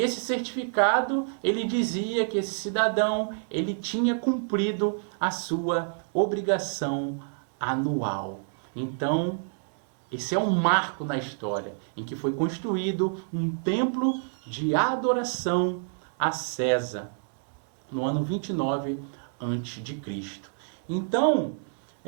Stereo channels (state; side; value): silent; left; 59 dB below the other